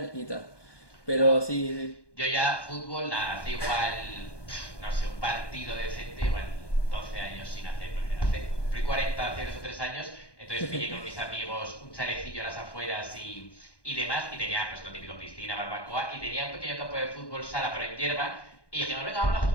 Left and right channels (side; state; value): right; late; 1.2 ms